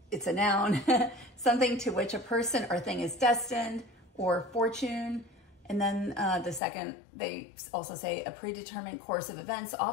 it's a noun, something to which a person or thing is destined, or fortune. And then the second, they also say a predetermined course of events,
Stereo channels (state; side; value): drops out; right; at 6.6 s